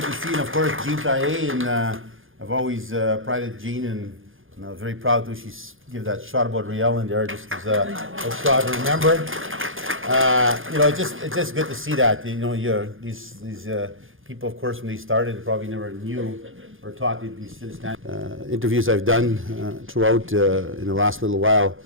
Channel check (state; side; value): late; left; 0.59 ms